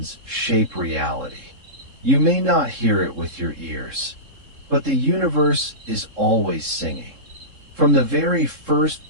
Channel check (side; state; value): left; late; 3.7 ms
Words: Shape Reality. You may not hear it with your ears, but the universe is always singing. From the very first